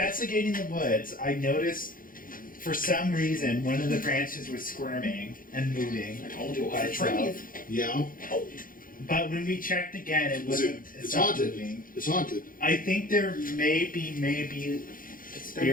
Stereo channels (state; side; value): late; right; 0.40 ms